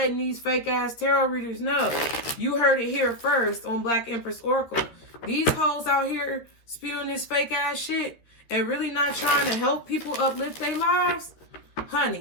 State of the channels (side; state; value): right; late; 13 ms